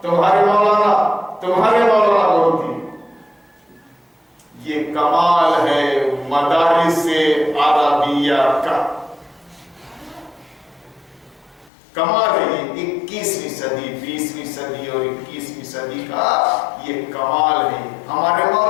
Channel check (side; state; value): right; drops out; at 11.7 s